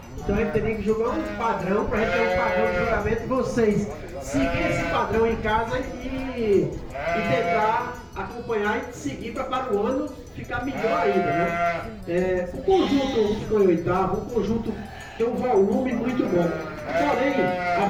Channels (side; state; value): both; identical; correlation 1.00